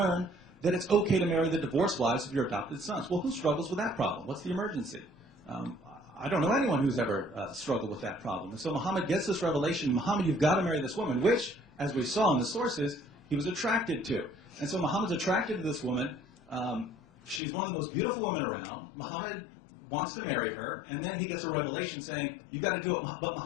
that it's okay to marry the divorced wives of your adopted sons. Well, who struggles with that problem? What's the emergency? I don't know anyone who's ever struggled with that problem. And so Muhammad gets this revelation, Muhammad, you've got to marry this woman, which, as we saw in the sources, he was attracted to. And so Muhammad's attracted to this woman. She's one of the most beautiful women around. Muhammad wants to marry her, and then he gets a revelation saying, you've got to do it, but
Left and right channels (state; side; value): drops out; right; at 17.4 s